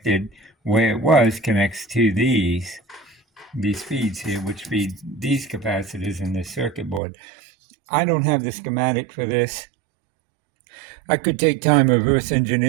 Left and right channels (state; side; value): drops out; left; at 7.0 s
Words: where it connects to these feeds here, which feed these capacitors in this circuit board. I don't have the schematic for this. I could take time reverse